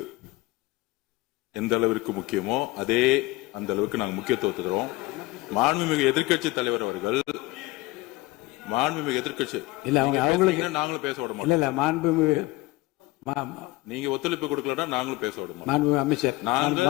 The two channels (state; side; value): quieter; right; 19.6 dB